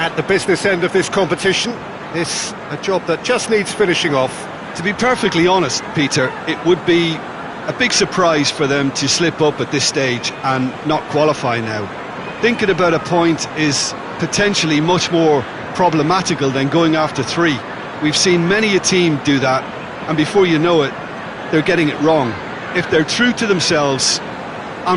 the business end of this competition. This a job that just needs finishing off. To be perfectly honest, Peter, it would be a big surprise for them to slip up at this stage and not qualify now. Thinking about a point is potentially much more problematical than going after 3. We've seen many a team do that, and before you know it, they're getting it wrong. If they're true to themselves,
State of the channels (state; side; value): identical; both; correlation 1.00